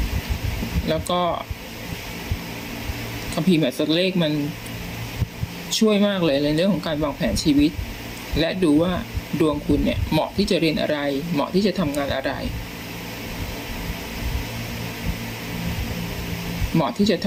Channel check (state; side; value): identical; both; correlation 1.00